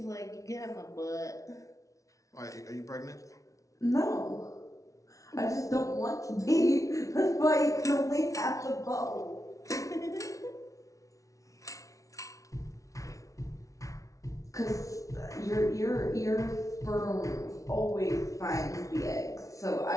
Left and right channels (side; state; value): right; late; 0.16 ms